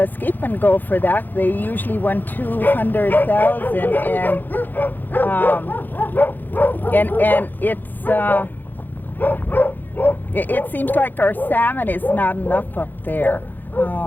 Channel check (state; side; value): late; right; 0.088 ms